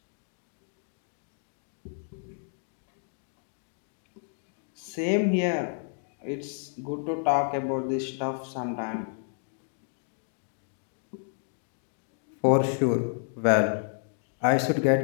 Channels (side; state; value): right; silent; digital silence